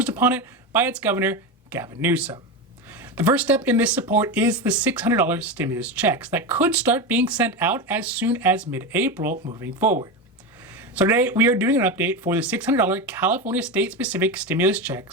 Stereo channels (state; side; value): normal; both; correlation 0.18